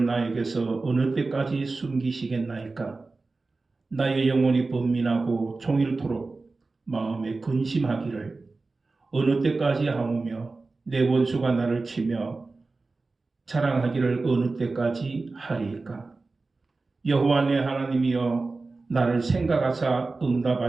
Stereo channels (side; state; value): left; quieter; 3.7 dB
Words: 나에게서 어느 때까지 숨기시겠나이까? 나의 영혼이 번민하고 종일토록 마음에 근심하기를 어느 때까지 하오며 내 원수가 나를 치며 자랑하기를 어느 때까지 하리이까? 여호와 내 하나님이여, 나를 생각하사